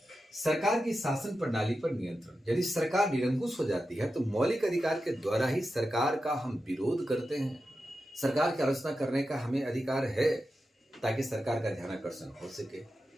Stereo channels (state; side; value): normal; both; correlation 0.91